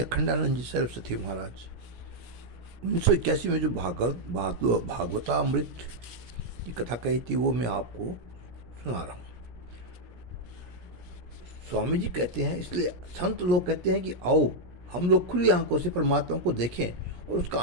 जी सरस्वती महाराज 1981 में जो भागवतामृत की कथा कही थी वो मैं आपको सुना रहा हूँ। स्वामी जी कहते हैं, इसलिए संत लोग कहते हैं कि आओ हम लोग खुली आंखों से परमात्मा को देखें और उसका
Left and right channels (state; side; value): late; left; 17 ms